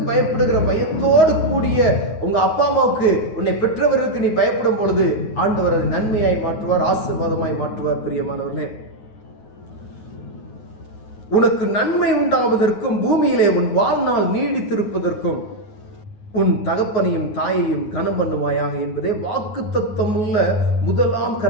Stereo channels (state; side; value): late; right; 9.4 ms